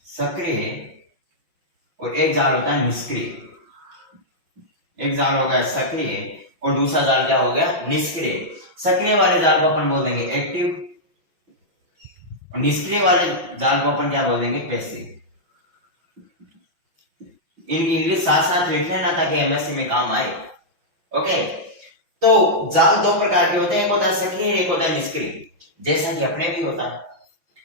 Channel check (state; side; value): late; left; 5.9 ms